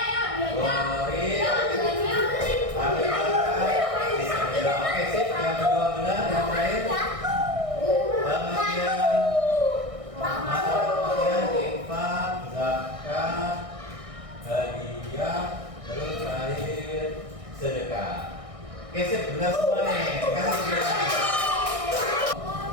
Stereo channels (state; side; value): late; left; 1.6 ms